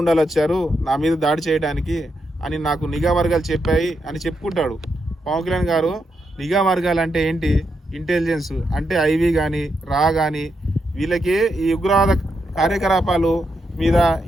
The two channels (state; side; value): normal; both; correlation 0.83